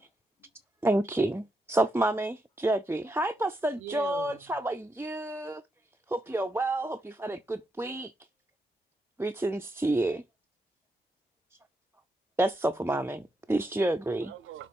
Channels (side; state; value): both; normal; correlation 0.82